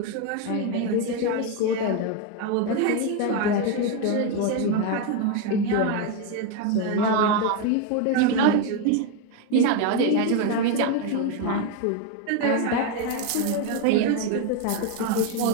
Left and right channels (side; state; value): both; different; correlation 0.02